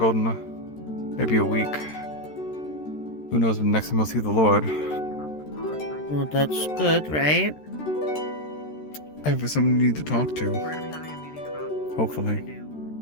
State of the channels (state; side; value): late; right; 13 ms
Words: in maybe a week. Who knows when next time we'll see the Lord. Well, that's good, right? I have someone you need to talk to. We're gonna be having a meeting about Hopefully. what to